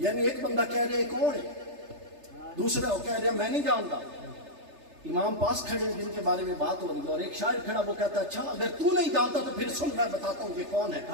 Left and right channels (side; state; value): left; late; 3.3 ms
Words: ایک بندہ کہہ رہے کون ہے، دوسرا وہ کہہ رہا میں نہیں جانتا، امام پاس کھڑے ہیں جن کے بارے میں بات ہو رہی ہے، اور ایک شاعر کھڑا، وہ کہتا ہے اچھا اگر تو نہیں جانتا تو پھر سن، میں بتاتا ہوں یہ کون ہے۔